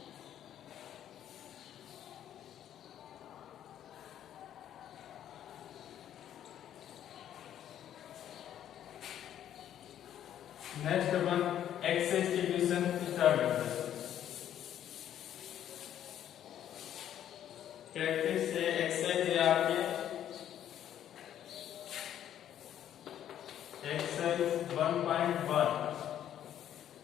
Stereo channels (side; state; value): right; quieter; 10.7 dB